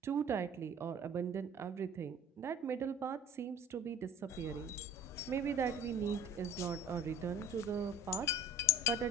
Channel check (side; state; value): both; normal; correlation 0.46